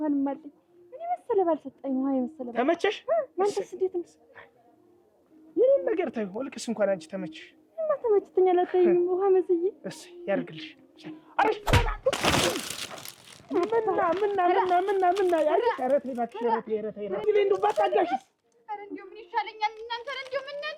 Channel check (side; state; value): both; identical; correlation 1.00